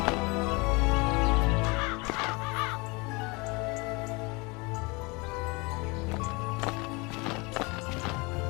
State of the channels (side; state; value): right; quieter; 27.0 dB